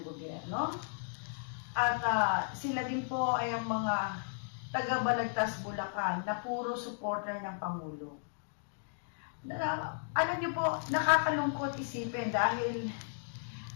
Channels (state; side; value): silent; right; digital silence